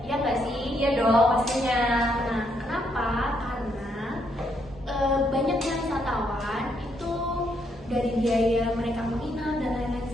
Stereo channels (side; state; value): both; normal; correlation 0.75